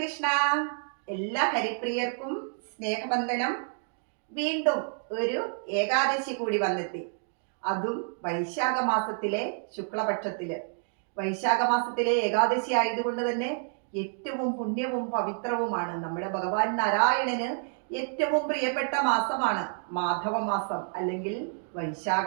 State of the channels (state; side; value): silent; left; 57 dB below the other